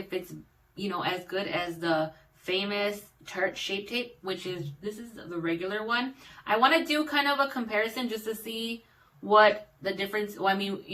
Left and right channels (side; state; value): both; identical; correlation 1.00